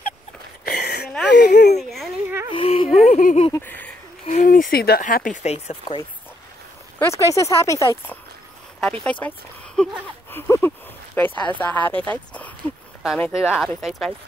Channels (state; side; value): normal; both; correlation 0.76